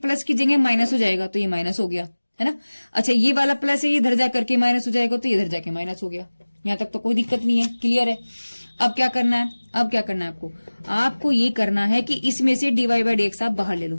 की जगह माइनस हो जाएगा, तो ये माइनस हो गया, है ना। अच्छा, ये वाला प्लस है, ये इधर जा करके माइनस हो जाएगा, तो इधर जाके माइनस हो गया। यहां तक तो कोई दिक्कत नहीं है, क्लियर है। अब क्या करना है, अब क्या करना है आपको ये करना है कि इसमें से dy बाई dx आप बाहर ले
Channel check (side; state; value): both; inverted; correlation -1.00